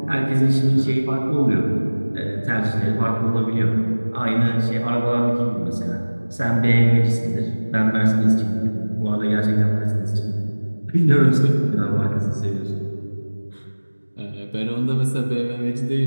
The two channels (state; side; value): inverted; both; correlation -1.00